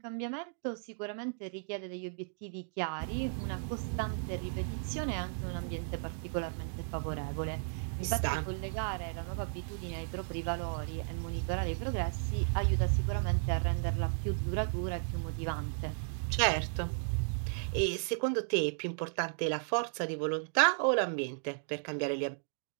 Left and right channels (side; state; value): left; silent; digital silence